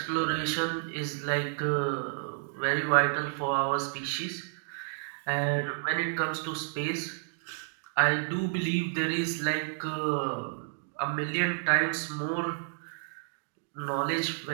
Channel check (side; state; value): left; silent; digital silence